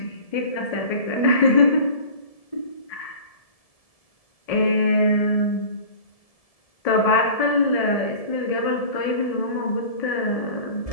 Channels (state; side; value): late; right; 1.7 ms